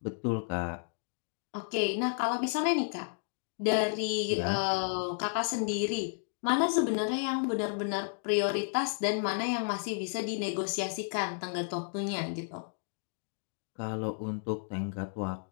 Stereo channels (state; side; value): silent; right; digital silence